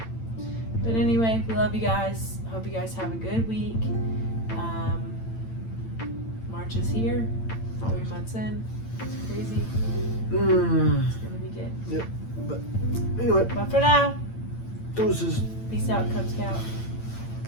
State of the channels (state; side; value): late; right; 8.9 ms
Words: but anyway, we love you guys. Hope you guys have a good week. March is here. 3 months in. It's crazy. It's gonna be good. Yep. But anyway. But for now, deuces. peace out, Cub Scout.